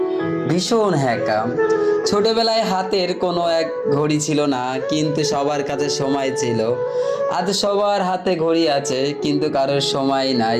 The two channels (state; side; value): identical; both; correlation 1.00